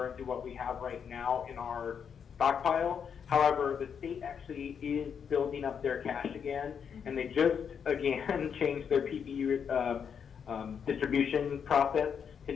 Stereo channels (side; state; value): right; quieter; 7.2 dB